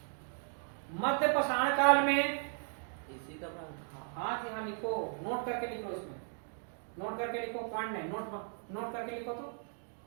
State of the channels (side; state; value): left; silent; 54 dB below the other